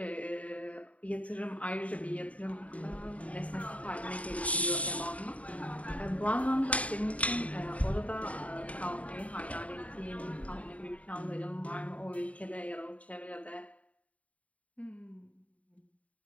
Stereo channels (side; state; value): right; late; 0.067 ms